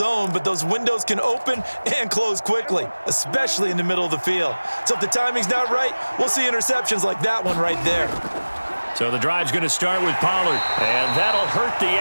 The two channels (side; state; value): both; inverted; correlation -1.00